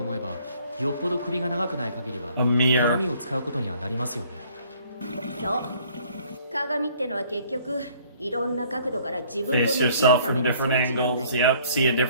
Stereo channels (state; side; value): inverted; both; correlation -0.58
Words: えば、よっぽど首が長くない限りは A mirror. 鏡を使うことにはなりますよね。そう。鏡ってのは結局いろんな角度から自分と Face 向き合う yourself ため from の装 different 置なんだ angles. よ。 Yep, see a